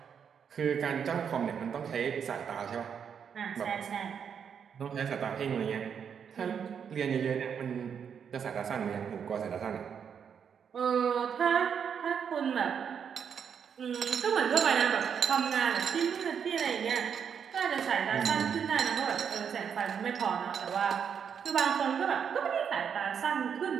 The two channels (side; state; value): left; quieter; 7.4 dB